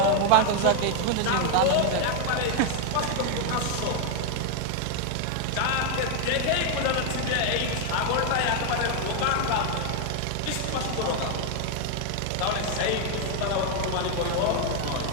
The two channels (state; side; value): different; both; correlation 0.00